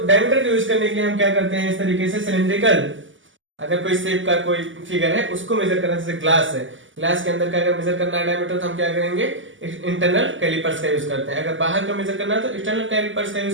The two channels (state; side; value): late; left; 0.56 ms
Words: डायमीटर का यूज करने के लिए हम क्या करते हैं, इस तरीके से सिलिंड्रिकल अगर कोई शेप का कोई फिगर है उसको मेजर करना, जैसे ग्लास है, ग्लास के अंदर का अगर मेजर करना है डायमीटर तो हम क्या करेंगे, इंटरनल कैलिपर्स का यूज करते हैं। अगर बाहर का मेजर करना है तो एक्सटर्नल कैलिपर्स का